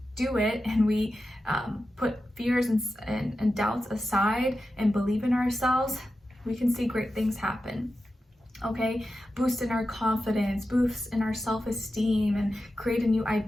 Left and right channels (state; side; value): normal; both; correlation 0.91